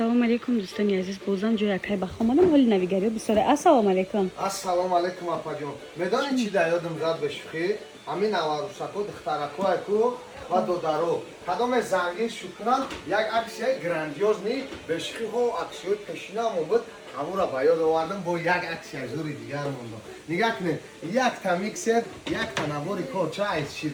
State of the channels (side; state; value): both; identical; correlation 1.00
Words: علیکم دوستان عزیز بازم جای اکای بخوامانم حال نویگری بسیاره. السلام علیکم. السلام علیکم اپا جون. میدانی چی در یادم زد بشخی؟ همین نواروسکو دخترکو کو و دودارو. کدام زنگی شکران یک عکس گراندیوز نی بشخی هو عکسیو پیشینم بود. همون را باید آوردم با یک عکس زوری دیگر موندم. نگاه کنید یک تا میکسر یک تا نواری کوچه از